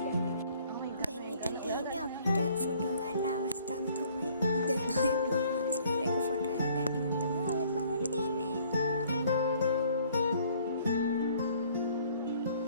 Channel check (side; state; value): both; inverted; correlation -0.59